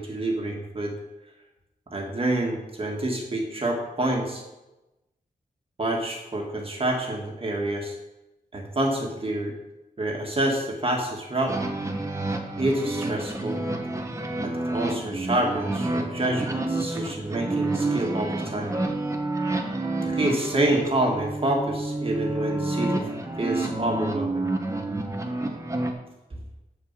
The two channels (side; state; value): both; normal; correlation 0.66